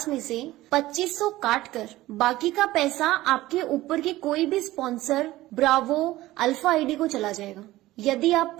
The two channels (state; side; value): quieter; left; 16.9 dB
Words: में से 2500 काट कर बाकी का पैसा आपके ऊपर के कोई भी स्पॉन्सर, ब्रावो, अल्फा आईडी को चला जाएगा। यदि आप